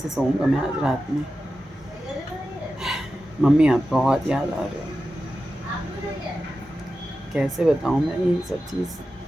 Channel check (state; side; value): normal; both; correlation 0.92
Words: सोऊंगा मैं आज रात में। मम्मी आप बहुत याद आ रहे हो। कैसे बताऊँ मैं ये सब चीज़,